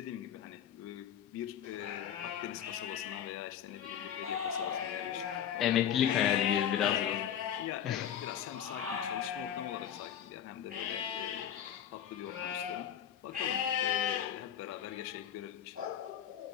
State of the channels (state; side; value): quieter; right; 9.6 dB